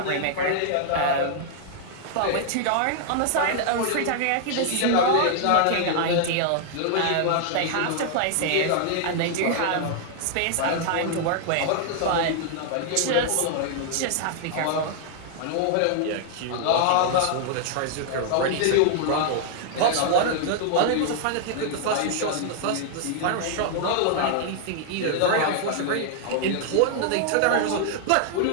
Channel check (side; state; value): both; different; correlation -0.01